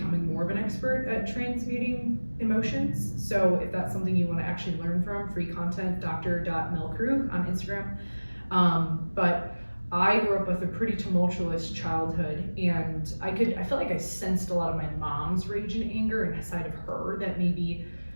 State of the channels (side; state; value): both; inverted; correlation -1.00